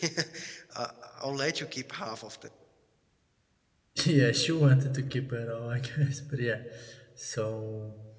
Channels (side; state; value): both; identical; correlation 1.00